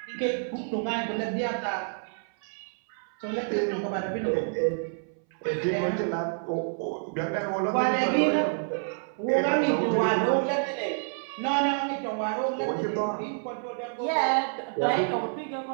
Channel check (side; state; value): left; silent; 59 dB below the other